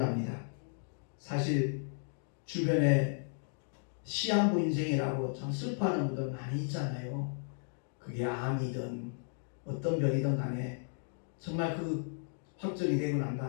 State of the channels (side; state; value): right; silent; digital silence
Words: 사실 주변에 시한부 인생이라고 참 슬퍼하는 분들 많이 있잖아요. 그게 암이든 어떤 병이든 간에 정말 그 확정이 되고 난